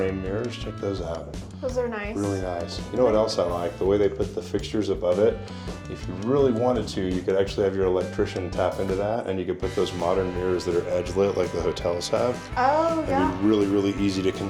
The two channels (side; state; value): both; identical; correlation 1.00